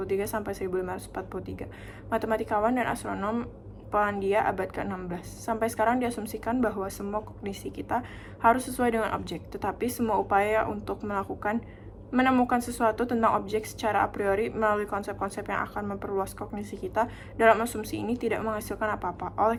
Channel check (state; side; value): identical; both; correlation 1.00